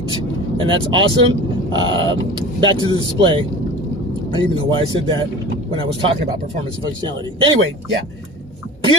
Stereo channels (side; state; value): both; normal; correlation 0.37